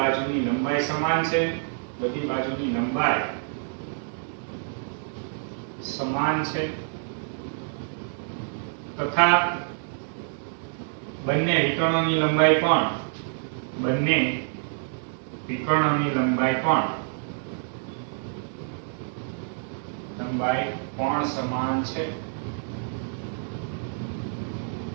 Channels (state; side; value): silent; left; digital silence